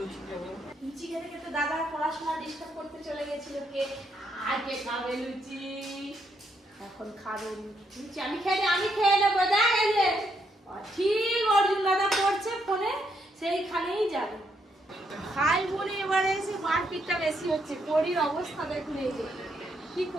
লুচি খেতে খেতে দাদা পড়াশোনা ডিস্টার্ব করতে চলে গেছিল। কে আগে খাবে লুচি? এখন খাবে লুচি। আমি খেয়ে নেবো। দেখ এই যে ঠিক অর্জুন দাদা পড়ছে ফোনে, সেইখানেই যাবে। খাই বলে এবারে এসে মারপিটটা বেশি হচ্ছে। পরির অবস্থা দেখুন, এই যে কি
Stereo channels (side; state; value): both; normal; correlation 0.76